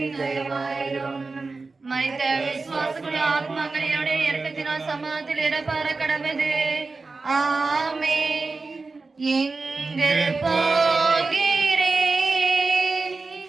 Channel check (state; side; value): quieter; left; 3.9 dB